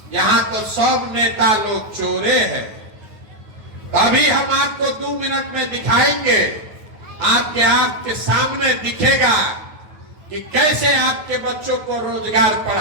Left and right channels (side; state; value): left; late; 9.4 ms